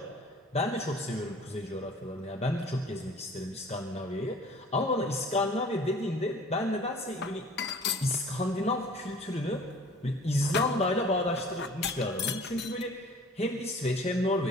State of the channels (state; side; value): normal; both; correlation 0.48